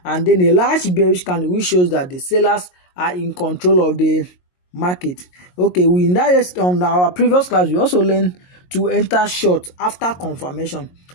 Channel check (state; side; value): late; right; 22 ms